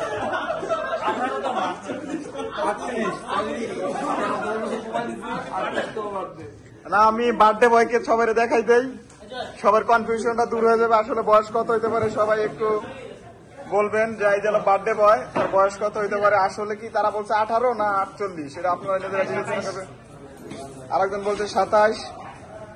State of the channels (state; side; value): identical; both; correlation 1.00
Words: না আমি বার্থডে বয়কে সবাই দেখাই দেই, সবার কনফিউশনটা দূর হয়ে যাবে। আসলে বয়স কত হইতে পারে সবাই একটু বলবেন যে এই যে বার্থডে বয় তার বয়স কত হইতে পারে। আসলে কি তারা বলছে 18 না 48, সেটা আপনারা নিজেরা বিবেচনা করবেন। আরেকজন বলছে 27।